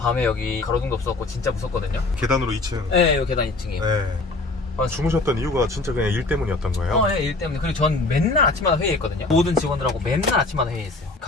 여기 가로등도 없었고 진짜 무섭거든요. 계단으로 2층. 네, 여기 계단 2층이에요. 네. 주무셨던 이유가 진짜 그냥 일 때문이었던 거예요? 네, 일 때문에. 그리고 전 맨날 아침마다 회의했거든요. 모든 직원들하고 맨날 아침마다 회의했어요.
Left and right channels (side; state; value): right; quieter; 3.3 dB